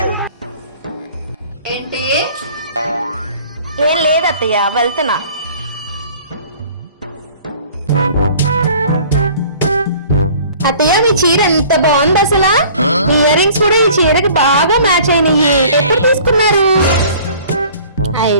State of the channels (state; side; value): inverted; both; correlation -0.50